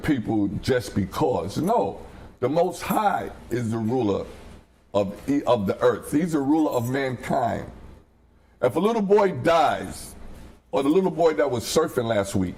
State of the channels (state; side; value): identical; both; correlation 1.00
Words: just because. No, the Most High is the ruler of the earth. He's the ruler of mankind. If a little boy dies, or the little boy that was surfing last week